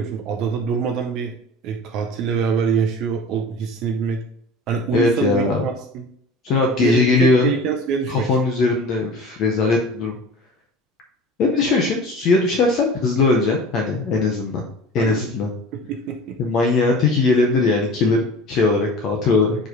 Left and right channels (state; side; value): normal; both; correlation 0.38